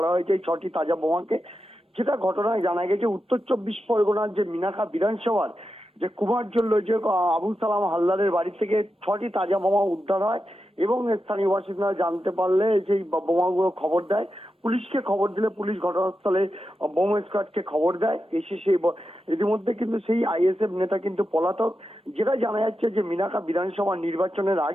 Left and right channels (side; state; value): both; normal; correlation 0.89